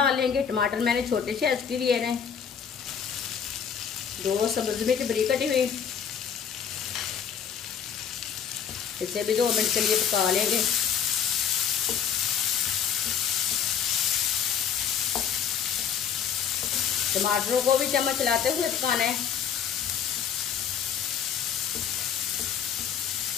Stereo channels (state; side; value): quieter; right; 7.7 dB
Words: लेंगे। टमाटर मैंने छोटे साइज के लिए हैं। 2 सब्ज मिर्च बारीक कटी हुई। इसे भी 2 मिनट के लिए पका लेंगे। टमाटरों को भी चम्मच चलाते हुए पकाना है।